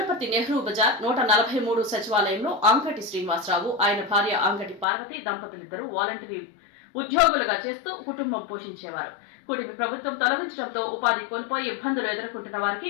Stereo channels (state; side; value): drops out; right; at 4.9 s